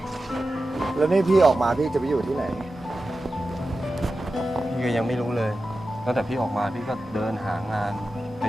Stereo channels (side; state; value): both; normal; correlation 0.93